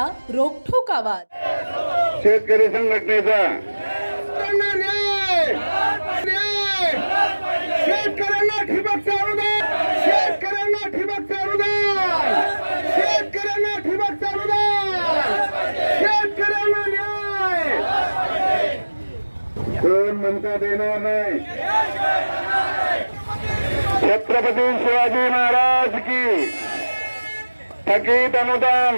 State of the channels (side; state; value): both; inverted; correlation -1.00